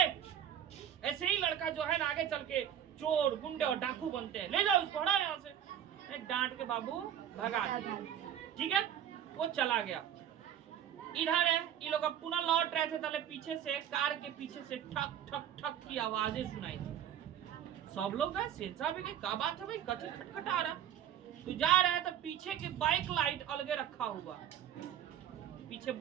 ऐसे ही लड़का जो है ना आगे चल के चोर, गुंडे और डाकू बनते हैं, ले जाओ उसको, हटाओ यहाँ से। डांट के बाबू भगा दिया। ठीक है, वो चला गया। इधर है ये लोग अब पुनः लौट रहे थे, तले पीछे से कार के पीछे से ठक ठक ठक की आवाजें सुनाई दी। सब लोग गए, सेन साहब भी गए, क्या बात है भाई, कथी खटखटा रहा? तो जा रहा है तो पीछे की बाइक लाइट अलगे रखा हुआ, पीछे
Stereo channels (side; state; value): left; quieter; 10.1 dB